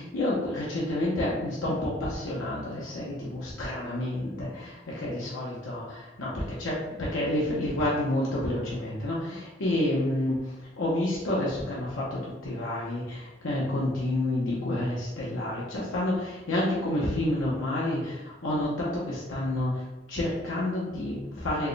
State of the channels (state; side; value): normal; both; correlation 0.59